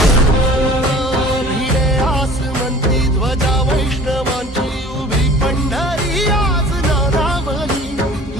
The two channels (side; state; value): both; normal; correlation 0.46